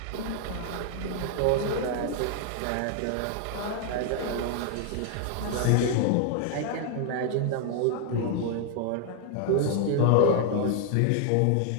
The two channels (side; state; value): both; different; correlation 0.00